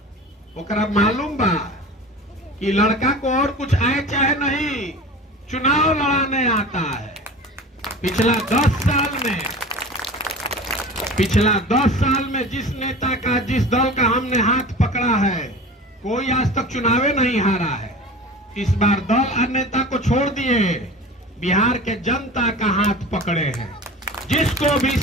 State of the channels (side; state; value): both; normal; correlation 0.36